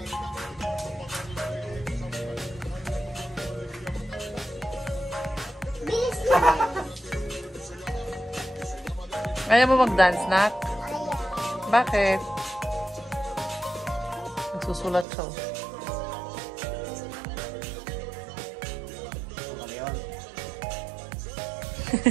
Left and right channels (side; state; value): left; drops out; at 15.1 s